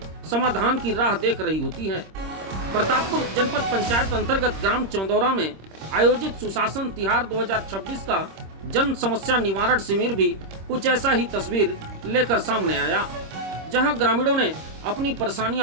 समाधान की राह देख रही होती हैं। प्रतापपुर जनपद पंचायत अंतर्गत ग्राम चंदौरा में आयोजित सुशासन तिहार 2026 का जन समस्या निवारण शिविर भी कुछ ऐसा ही तस्वीर लेकर सामने आया, जहां ग्रामीणों ने अपनी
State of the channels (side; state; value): left; late; 26 ms